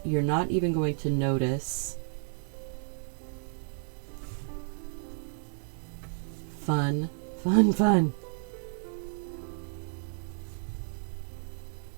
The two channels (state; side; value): silent; left; digital silence